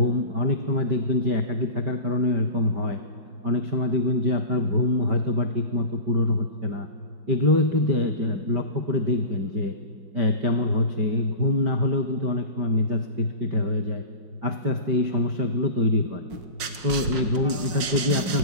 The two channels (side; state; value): left; late; 5.5 ms